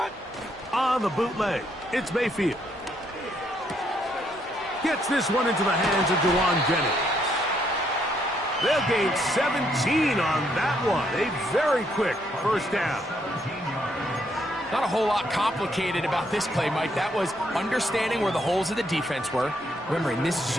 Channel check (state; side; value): normal; both; correlation 0.73